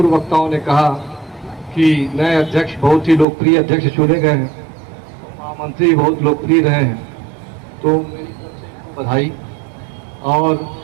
वक्ताओं ने कहा कि नए अध्यक्ष बहुत ही लोकप्रिय अध्यक्ष चुने गए हैं, महामंत्री बहुत लोकप्रिय रहे हैं, तो मेरी बधाई और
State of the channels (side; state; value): left; drops out; at 3.2 s